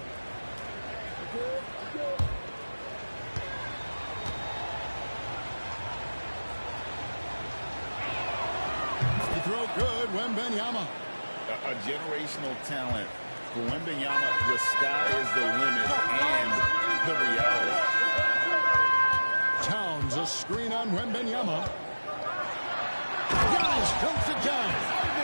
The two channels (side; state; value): both; inverted; correlation -1.00